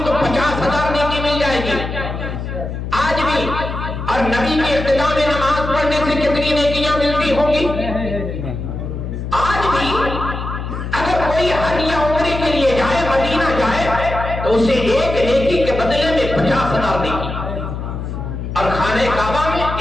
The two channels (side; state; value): left; noise; hum, 6 dB below the sound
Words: تو 50,000 نیکی مل جائے گی آج بھی۔ اور نبی کی ابتدا میں نماز پڑھنے سے کتنی نیکیاں ملتی ہوں گی آج بھی۔ اگر کوئی حج یا عمرے کے لیے جائے، مدینہ جائے، تو اسے ایک نیکی کے بدلے میں 50,000 نیکی، اور خانہ کعبہ میں